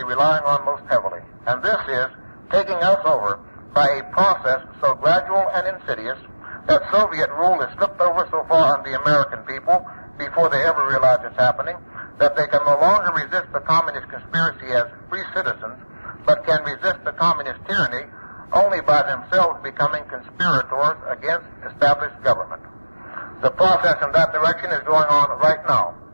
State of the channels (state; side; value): inverted; both; correlation -1.00